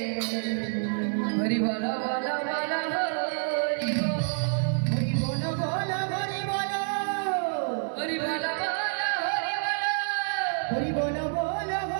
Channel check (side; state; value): left; silent; 59 dB below the other